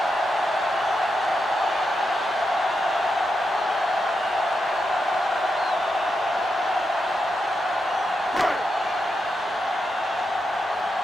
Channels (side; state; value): both; normal; correlation 0.85